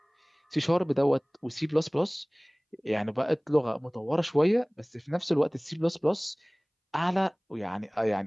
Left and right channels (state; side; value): identical; both; correlation 1.00